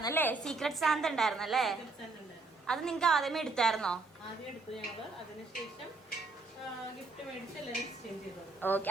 സീക്രട്ട് സാന്ത ഉണ്ടായിരുന്നല്ലേ? അത് നിങ്ങൾക്ക് ആദ്യമേ എടുത്തായിരുന്നോ? ആദ്യം എടുത്തു ഞങ്ങള്. അതിനുശേഷം ഗിഫ്റ്റ് മേടിച്ച് എല്ലാവരും എക്സ്ചേഞ്ച് ചെയ്തു. ഓക്കെ.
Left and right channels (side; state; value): left; quieter; 3.7 dB